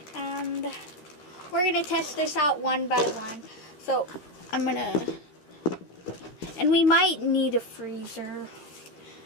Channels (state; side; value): late; right; 14 ms